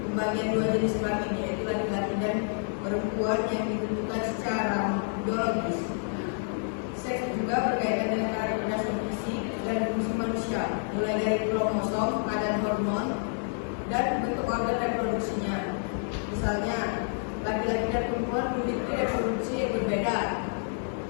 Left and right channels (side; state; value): right; silent; 58 dB below the other